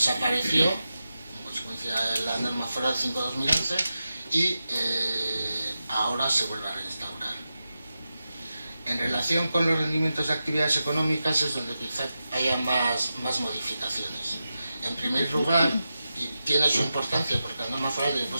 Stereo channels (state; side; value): inverted; both; correlation -0.91